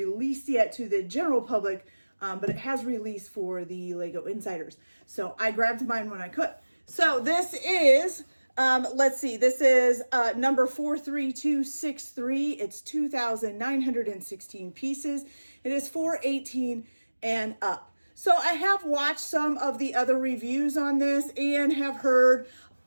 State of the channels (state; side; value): inverted; both; correlation -1.00